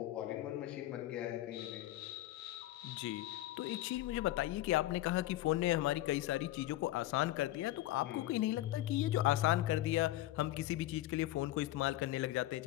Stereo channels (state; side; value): quieter; right; 15.4 dB